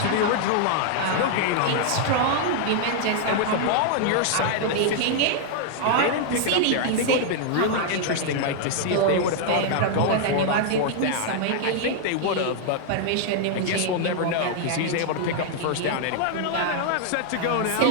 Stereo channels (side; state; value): both; different; correlation 0.00